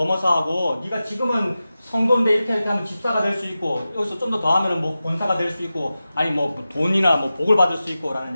네가 지금은 성도인데 이렇게 하면 집사가 될 수 있고 여기서 좀 더 하면 뭐 권사가 될 수 있고 아니 뭐 돈이나 뭐 복을 받을 수 있고 라는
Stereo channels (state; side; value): inverted; both; correlation -0.94